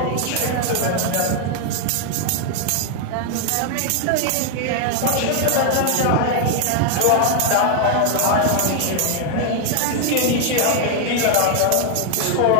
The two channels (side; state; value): both; different; correlation 0.00